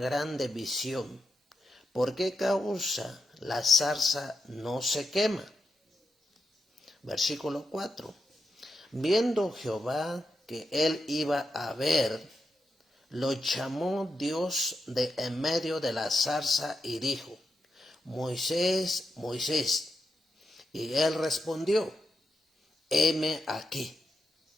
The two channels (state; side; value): normal; both; correlation 0.86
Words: visión. ¿Por qué causa la zarza no se quema? Versículo 4. Viendo Jehová que él iba a ver, lo llamó Dios de en medio de la zarza y dijo: Moisés, Moisés. Y él respondió: heme aquí.